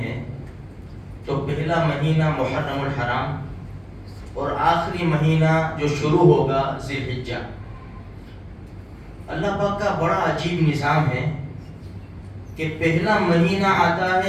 تو پہلا مہینہ محرم الحرام اور آخری مہینہ جو شروع ہوگا ذی الحجہ۔ اللہ پاک کا بڑا عجیب نظام ہے کہ پہلا مہینہ آتا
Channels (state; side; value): identical; both; correlation 1.00